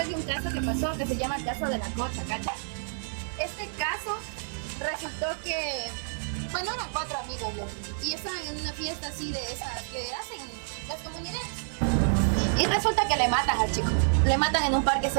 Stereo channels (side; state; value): left; silent; digital silence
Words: de un caso que pasó que se llama el caso de la Cocha, ¿cachai? Este caso resultó que mandaron 4 amigos, ¿no? Y estaban en una fiesta así y resulta que le matan al chico. Le matan en un parque